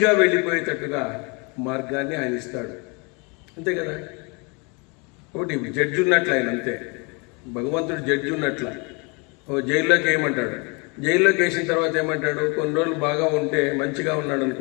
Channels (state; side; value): quieter; right; 31.1 dB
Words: వెళ్ళిపోయేటట్టుగా మార్గాన్ని ఆయన ఇస్తాడు. అంతే కదా. ఒకటి జడ్జి ఉన్నట్లు ఆయన, అంతే. భగవంతుడు జడ్జి ఉన్నట్ల. జైల్లోకి ఏమంటాడు, జైల్లోకి వేసిన తర్వాత ఏమంటాడు, కొన్ని రోజులు బాగా ఉంటే, మంచిగా ఉన్నాడు